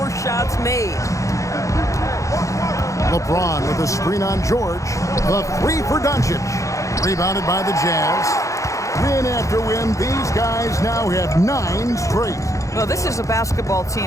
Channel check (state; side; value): late; right; 0.15 ms